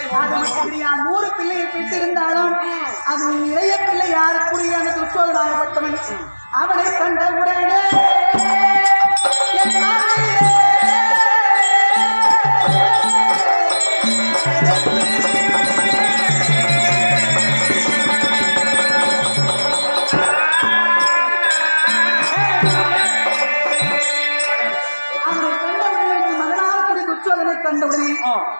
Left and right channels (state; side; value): inverted; both; correlation -1.00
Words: 100 பிள்ளையை பெற்றிருந்தாலும் அது இளைய பிள்ளை யாருக்குரிய அந்த துச்சோதனாகப்பட்டவன் அவனை கண்டவுடனே